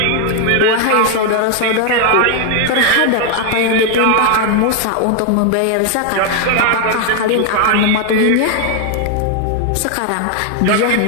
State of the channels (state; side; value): different; both; correlation 0.01